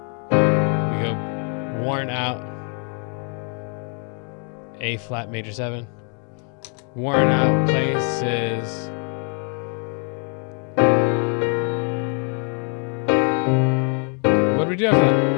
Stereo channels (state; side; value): quieter; right; 39.7 dB